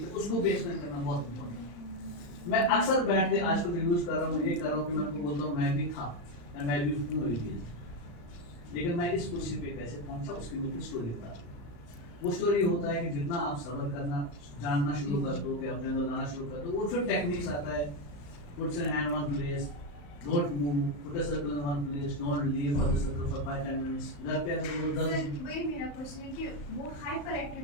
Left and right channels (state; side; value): late; right; 35 ms